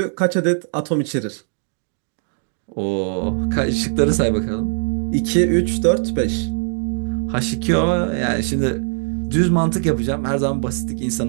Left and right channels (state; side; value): silent; left; digital silence